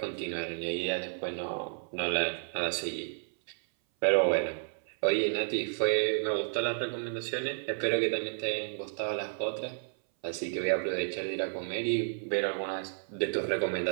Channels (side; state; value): left; silent; 57 dB below the other